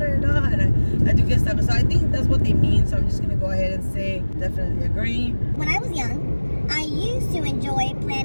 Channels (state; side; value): inverted; both; correlation -1.00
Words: and I do get stuff. So I think that's what they mean, so I'm just gonna go ahead and say definitely agree. When I was young, I used to enjoy